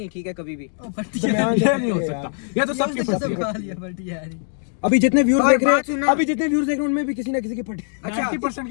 ठीक है कभी भी। ओ, फटी है। दरमियान से ये फटी नहीं हो है सकता, यार। ये तो सबकी ये फटी सब है। खा लिया, फटी है यार। अभी जितने व्यूज और देख रहे बात सुनना। हैं, अभी जितने व्यूज देख रहे हैं उनमें भी किसी ना किसी की फटी। अच्छा 90%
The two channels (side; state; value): right; silent; digital silence